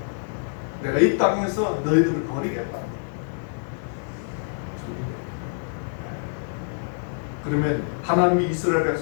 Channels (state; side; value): silent; right; 61 dB below the other